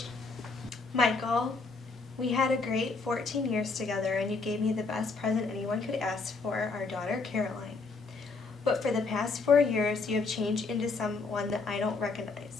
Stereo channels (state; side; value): quieter; right; 4.1 dB